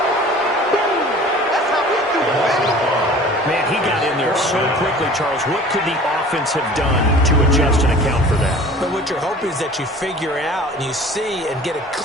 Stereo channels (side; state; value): both; normal; correlation 0.45